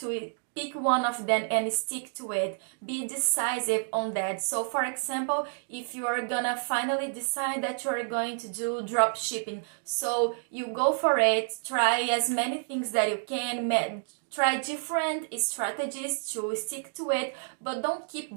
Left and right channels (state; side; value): silent; left; digital silence